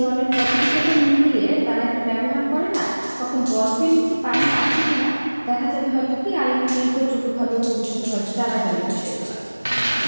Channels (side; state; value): both; inverted; correlation -1.00